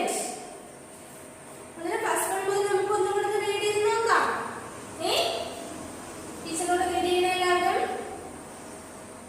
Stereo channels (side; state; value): both; identical; correlation 1.00